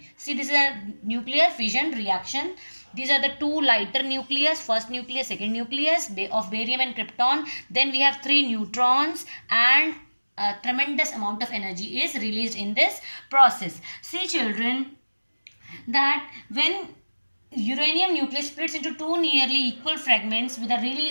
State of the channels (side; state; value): both; inverted; correlation -1.00